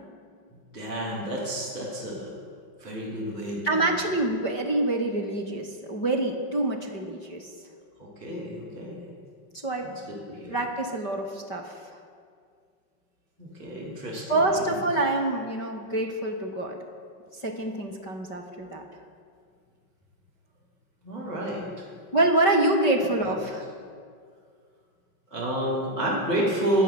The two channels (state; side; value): late; right; 5.1 ms